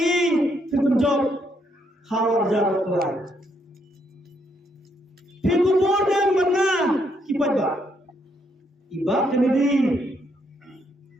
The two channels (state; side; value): normal; both; correlation 0.74